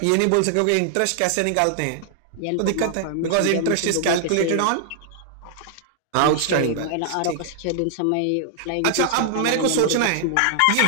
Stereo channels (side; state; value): both; different; correlation 0.00